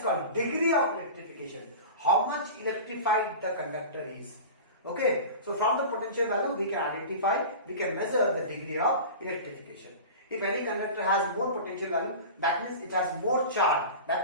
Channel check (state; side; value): inverted; both; correlation -0.32